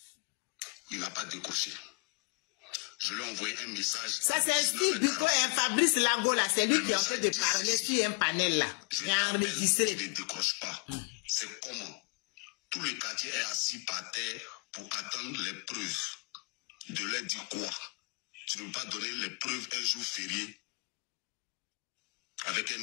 Il n'a pas décroché. Je lui ai envoyé un message. Ça, c'est Fabrice Lago, là. C'est lui qui est en train de parler sur un panel, là. Je t'appelle, tu ne décroches pas. C'est comment? Tout le quartier est assis par terre pour attendre les preuves. De leur dire quoi? Tu ne peux pas donner les preuves un jour férié avec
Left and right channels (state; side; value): quieter; right; 30.4 dB